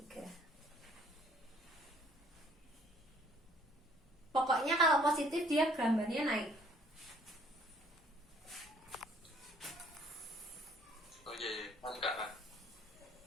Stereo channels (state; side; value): normal; both; correlation 0.60